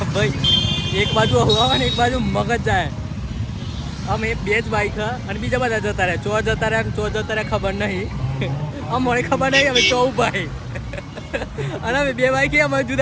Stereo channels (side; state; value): both; identical; correlation 1.00